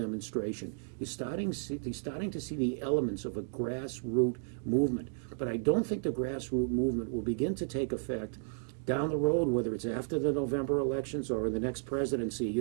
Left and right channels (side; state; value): left; silent; digital silence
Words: You're starting to see the elements of a grassroots movement, but I don't think the grassroots movement will begin to take effect down the road, whether it's after the November elections or in the next presidency.